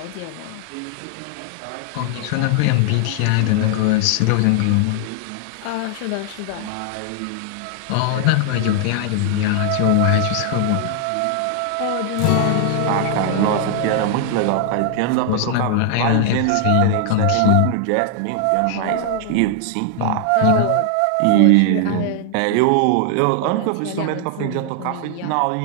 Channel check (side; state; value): both; different; correlation 0.00